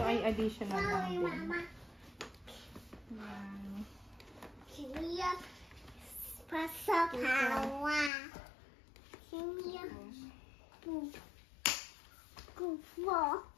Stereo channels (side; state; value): right; drops out; at 8.1 s